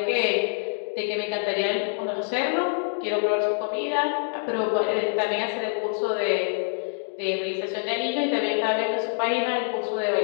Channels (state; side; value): silent; right; digital silence